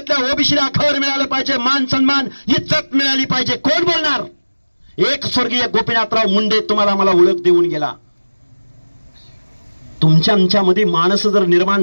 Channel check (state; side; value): inverted; both; correlation -1.00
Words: ओबीसीला घर मिळालं पाहिजे, मान सन्मान इज्जत मिळाली पाहिजे. कोण बोलणार? एक स्वर्गीय गोपीनाथराव मुंडे तुम्हाला मला ओळख देऊन गेला. तुमच्या आमच्यामध्ये माणसं जर